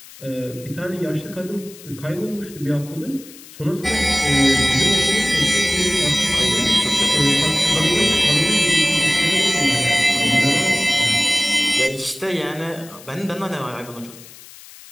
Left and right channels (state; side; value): noise; left; hiss, 19 dB below the sound